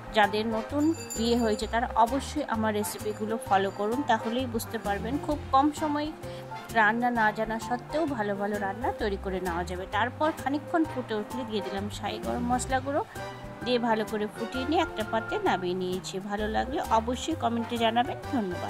যাদের নতুন বিয়ে হয়েছে তারা অবশ্যই আমার রেসিপিগুলো ফলো করুন, তাহলেই বুঝতে পারবেন খুব কম সময়ে রান্না না জানা সত্ত্বেও ভালো ভালো রান্না তৈরি করে নেওয়া যাবে। তারপর খানিকক্ষণ ফুটে উঠলে দিয়ে দিলাম শাহি গরম মশলা গুঁড়ো, দিয়ে ভালো করে ফুটিয়ে নিয়ে একটা পাত্রে নামিয়ে নিয়েছি। ভালো লাগলে অবশ্যই কমেন্টে জানাবেন।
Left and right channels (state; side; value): identical; both; correlation 1.00